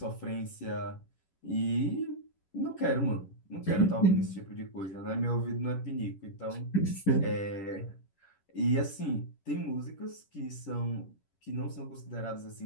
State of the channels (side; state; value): right; late; 11 ms